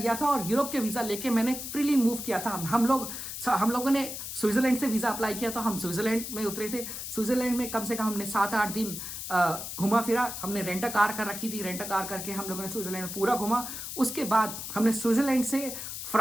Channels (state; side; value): noise; left; hiss, 7 dB below the sound